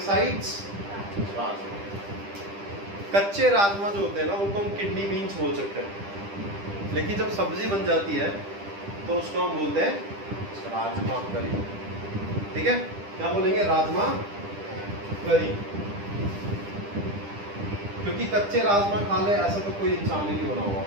rajma. कच्चे राजमा जो होते हैं ना उनको हम किडनी बीन्स बोल सकते हैं, लेकिन जब सब्जी बन जाती है तो उसको हम बोलते हैं राजमा करी, ठीक है। क्या बोलेंगे? राजमा करी, क्योंकि कच्चे राजमा खा ले ऐसा तो कोई इंसान ही नहीं बना हुआ।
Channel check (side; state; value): left; late; 10 ms